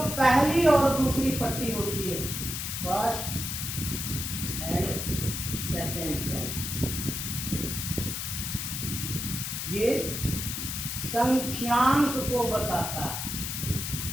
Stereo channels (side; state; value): left; noise; hiss, 4 dB below the sound